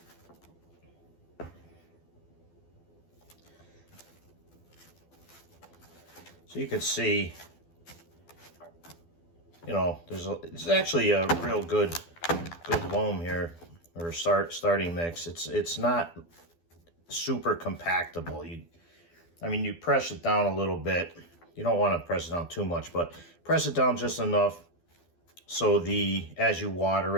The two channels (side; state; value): right; late; 12 ms